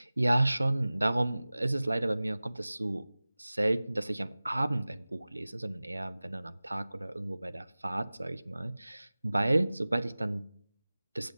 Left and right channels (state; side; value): inverted; both; correlation -0.98